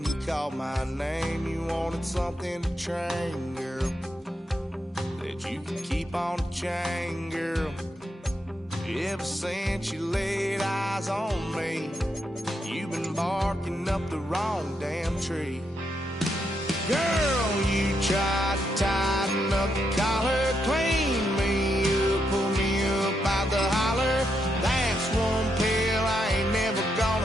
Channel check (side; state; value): both; normal; correlation 0.81